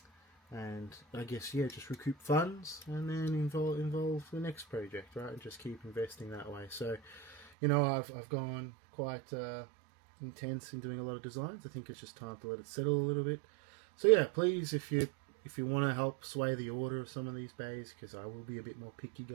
and I guess just recoup funds, and then involve the next project, right? And just keep investing that way. So, I've gone quite intense in doing a lot of designs. I think it's just time to let it settle a little bit. So yeah, please, if you want to help sway the order of some of these bays, because I will be a bit more picky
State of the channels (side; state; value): left; drops out; at 7.5 s